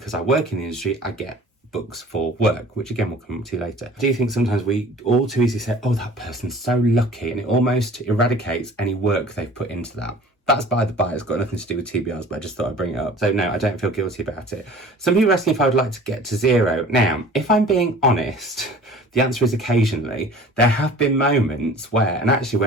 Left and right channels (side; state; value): both; normal; correlation 0.46